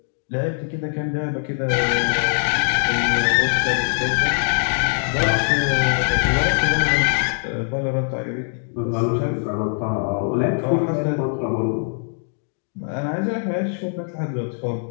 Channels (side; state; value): right; silent; 64 dB below the other